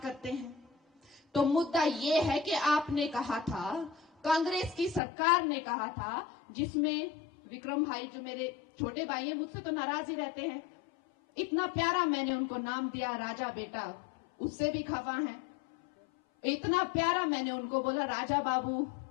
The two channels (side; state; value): right; drops out; at 5.0 s